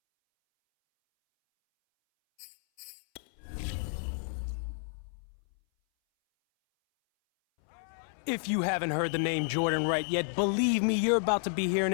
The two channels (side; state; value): right; silent; 57 dB below the other